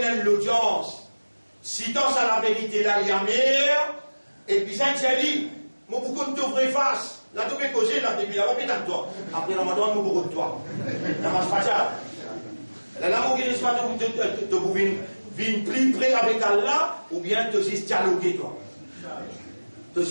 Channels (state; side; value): inverted; both; correlation -1.00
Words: l'audience. Citant ça la vérité là, il y a meilleur, et puis ça dit, moi beaucoup de te face. Là, tu peux causer, là, depuis là-bas, pétale toi. Après, on m'a demandé beaucoup de toi. Ça marche pas ça. Là, mon guide, pas de venir plus près avec Allah, ou bien te dialoguer, toi. Tu